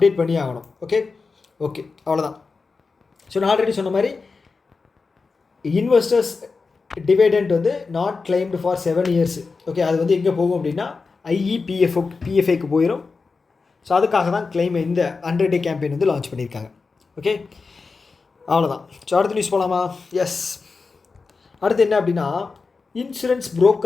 பண்ணி ஆகணும். ஓகே, அவ்வளோதான். ஸோ நான் ஆல்ரெடி சொன்ன மாதிரி இன்வெஸ்டர்ஸ் டிவைடெண்ட் வந்து not claimed for 7 years. Okay, அது வந்து எங்கே போகும் அப்படின்னா பிஎஃப்ஐக்கு போயிடும். ஸோ அதுக்காக தான் கிளைம் இந்த 100 டே கேம்பெயின் வந்து லான்ச் பண்ணியிருக்காங்க. ஓகே, அவ்வளோதான். ஸோ அடுத்த நியூஸ் போகலாமா? எஸ், அடுத்து என்ன அப்படின்னா insurance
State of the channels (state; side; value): quieter; right; 4.4 dB